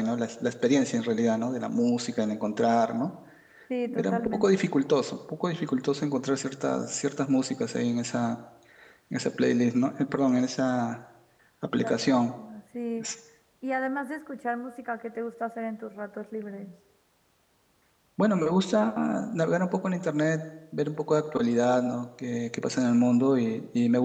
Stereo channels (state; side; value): identical; both; correlation 1.00